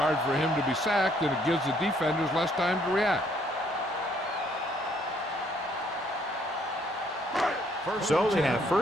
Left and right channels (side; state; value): both; normal; correlation 0.66